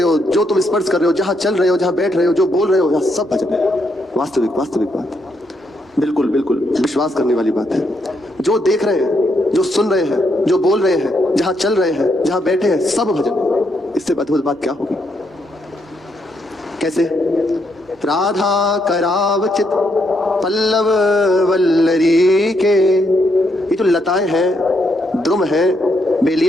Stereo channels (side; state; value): both; normal; correlation 0.77